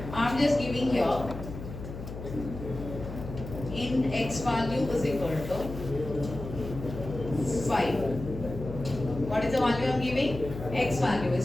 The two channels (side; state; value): left; noise; hum, 9 dB below the sound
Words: I'm just giving here int x value is equal to 5. What is the value I'm giving? X value